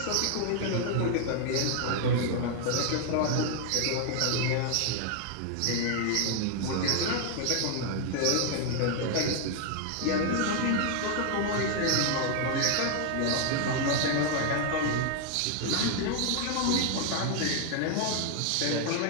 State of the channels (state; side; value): different; both; correlation 0.00